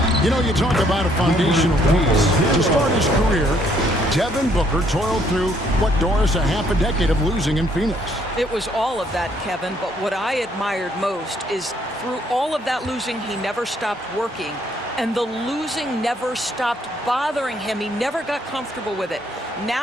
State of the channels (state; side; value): normal; both; correlation 0.67